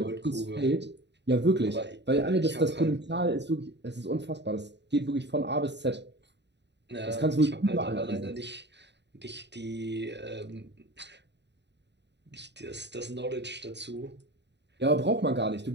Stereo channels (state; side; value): late; left; 0.50 ms